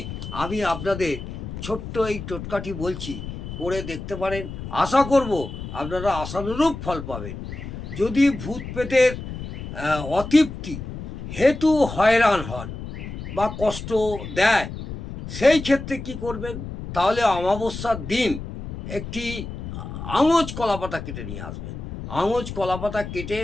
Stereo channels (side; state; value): left; noise; rumble, 9 dB below the sound